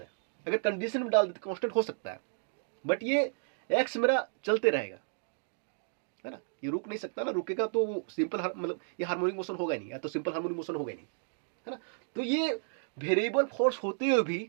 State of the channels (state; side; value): silent; left; digital silence